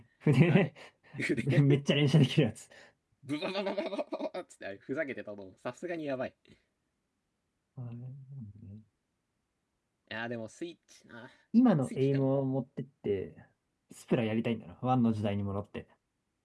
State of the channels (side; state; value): both; identical; correlation 1.00